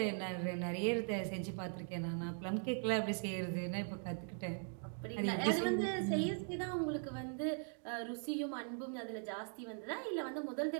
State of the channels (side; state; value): left; silent; 51 dB below the other